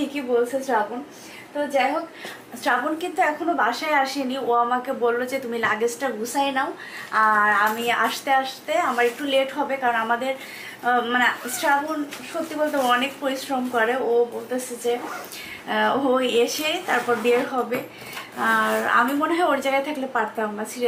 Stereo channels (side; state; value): both; identical; correlation 1.00